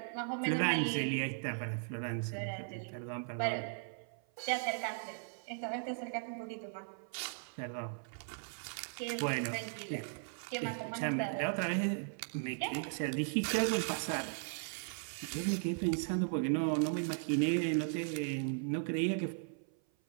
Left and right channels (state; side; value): silent; left; 53 dB below the other